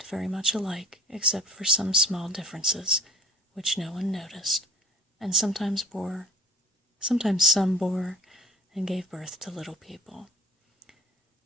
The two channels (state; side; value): normal; both; correlation 0.46